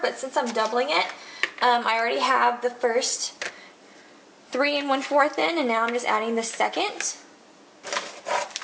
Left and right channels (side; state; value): both; identical; correlation 1.00